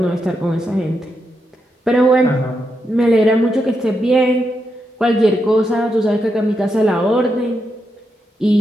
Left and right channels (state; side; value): normal; both; correlation 0.84